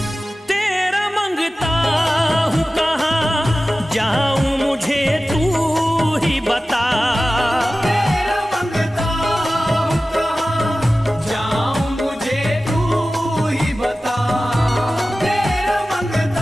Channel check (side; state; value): both; normal; correlation 0.96